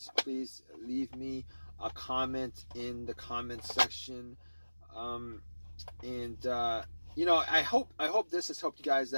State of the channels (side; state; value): both; inverted; correlation -1.00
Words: please leave me a comment in the comment section. I hope this has helped you guys